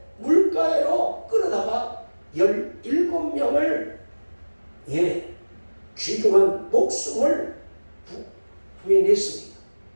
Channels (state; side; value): inverted; both; correlation -1.00